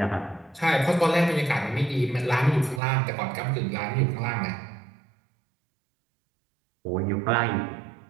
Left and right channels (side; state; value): left; drops out; at 2.8 s